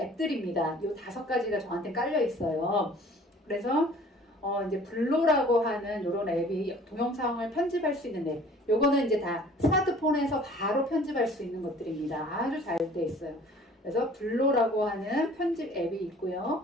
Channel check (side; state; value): both; normal; correlation 0.51